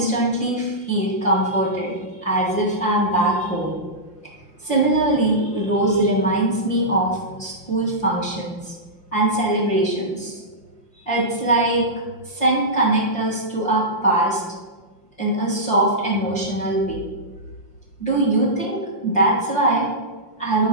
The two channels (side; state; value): right; late; 5.7 ms